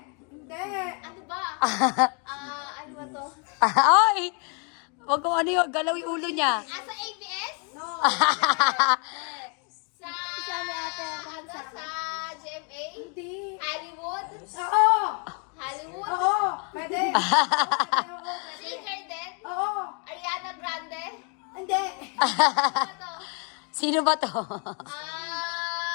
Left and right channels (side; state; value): right; quieter; 37.6 dB